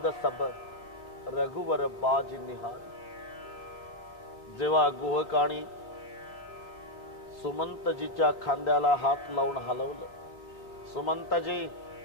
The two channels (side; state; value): right; late; 3.6 ms